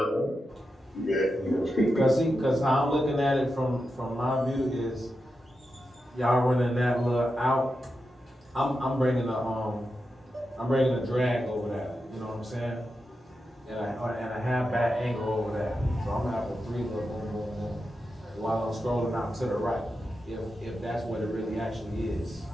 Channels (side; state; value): both; normal; correlation 0.89